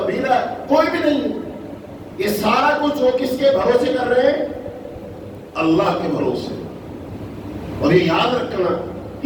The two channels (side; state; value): both; identical; correlation 1.00